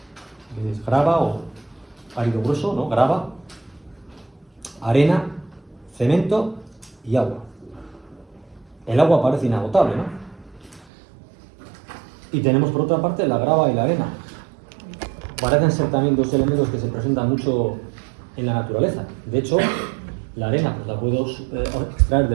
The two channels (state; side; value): drops out; left; at 10.9 s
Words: es grava o árido grueso, ¿no? Grava, arena, cemento y agua. El agua parece inagotable, ¿no? Y tenemos por otra parte la grava y la arena. Parecen ser también 2 elementos que se presentan mucho en la naturaleza. De hecho, la arena pues la puedo extraer